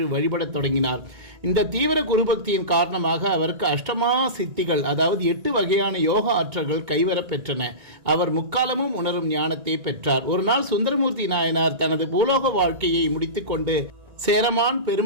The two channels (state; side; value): late; left; 1.9 ms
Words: வழிபடத் தொடங்கினார். இந்த தீவிர குருபக்தியின் காரணமாக அவருக்கு அஷ்டமா சித்திகள், அதாவது 8 வகையான யோக ஆற்றல்கள் கைவரப் பெற்றன. அவர் முக்காலமும் உணரும் ஞானத்தை பெற்றார். ஒரு நாள் சுந்தரமூர்த்தி நாயனார் தனது பூலோக வாழ்க்கையை முடித்துக்கொண்டு சேரமான்